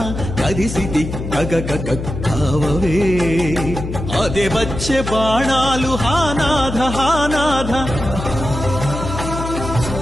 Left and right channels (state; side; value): noise; left; hum, 6 dB below the sound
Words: కదిసితి గగ కావవే అదే వచ్చే బాణాలు హానాథ హానాథ